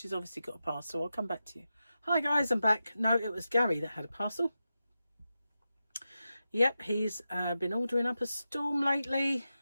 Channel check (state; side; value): inverted; both; correlation -0.91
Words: obviously got a parcel. I'll come back to you. Hi guys, I'm back. No, it was Gary that had a parcel. Yep, he's been ordering up a storm lately.